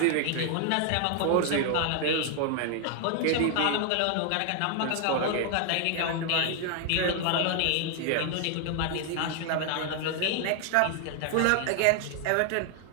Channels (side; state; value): both; different; correlation 0.00